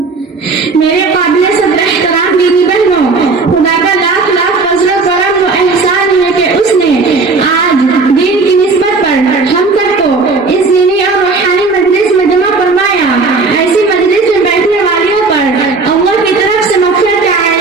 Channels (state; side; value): quieter; left; 4.0 dB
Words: میرے قابل صدر احترام دینی بہنوں، خدا کا لاکھ لاکھ فضل و کرم و احسان ہے کہ اس نے آج دین کی نسبت پر ہم سب کو اس دینی اور روحانی مجلس میں جمع فرمایا. ایسی مجلس میں بیٹھنے والیوں پر اللہ کی طرف سے مغفرت کا